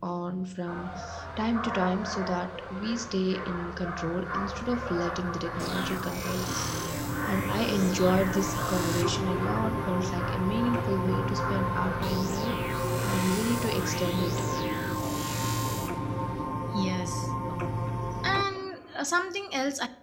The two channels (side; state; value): both; identical; correlation 1.00